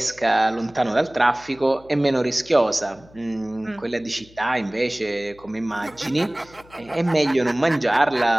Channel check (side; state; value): left; noise; hum, 25 dB below the sound